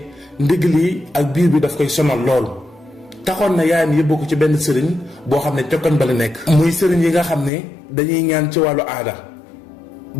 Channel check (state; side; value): drops out; right; at 7.5 s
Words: ndigg li ak biir bi daf koy sonal lool. taxoon na yaayam yóbbu ko ci benn sëriñ boo xam ne cokkan ba la nekk. muy sëriñ yi nga xam ne dañuy ñaan ci wàllu aada